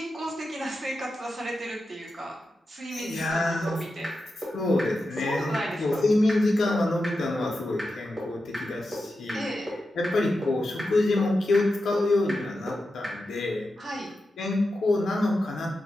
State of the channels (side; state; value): both; normal; correlation 0.90